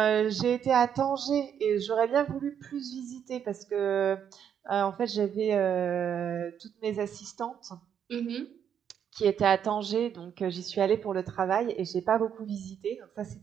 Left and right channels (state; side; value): quieter; left; 8.5 dB